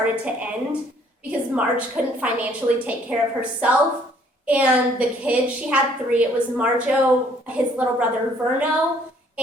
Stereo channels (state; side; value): normal; both; correlation 0.62